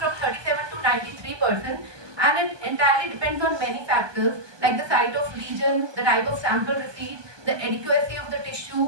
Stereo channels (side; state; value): left; late; 1.2 ms